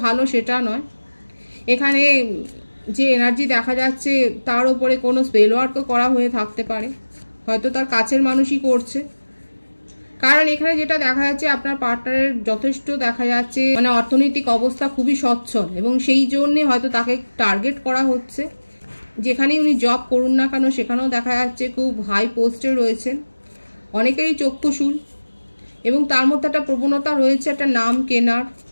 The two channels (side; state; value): both; inverted; correlation -1.00